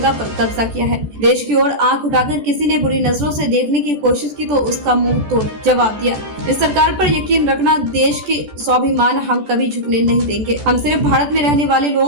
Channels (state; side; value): late; left; 14 ms